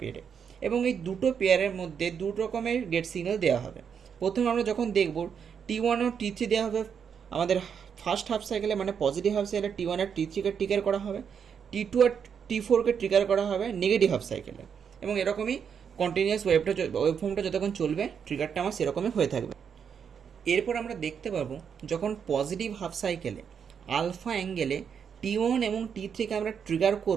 এবং এই দুটো পেয়ারের মধ্যে দু রকমের গেট সিগন্যাল দেওয়া হবে। প্রথমে আমরা যখন দেখব T1 ও T3 দেওয়া হবে আমাদের ফার্স্ট হাফ সাইকেলে, মানে পজিটিভ হাফ সাইকেলে T1 আর T3কে ট্রিগার করা হবে, T2 আর T4কে ট্রিগার করা হবে নেগেটিভ হাফ সাইকেলে। এবং এরকমই কন্টিনিউয়াস ওয়েভফর্মটা যতক্ষণ চলবে ট্রিগারটা আমার সেরকমই হয়ে থাকবে। এরপর আমরা দেখতে পাবো যখন পজিটিভ হাফ সাইকেলে আলফা অ্যাঙ্গেলে T1 এবং T3কে আমরা ট্রিগার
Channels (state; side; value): quieter; left; 7.2 dB